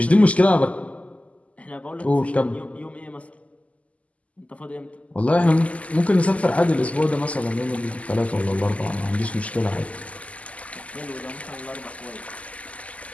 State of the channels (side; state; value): right; late; 0.068 ms